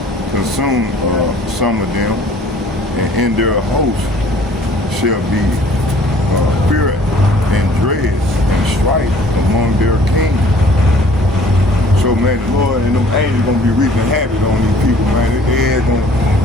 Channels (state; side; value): normal; both; correlation 0.54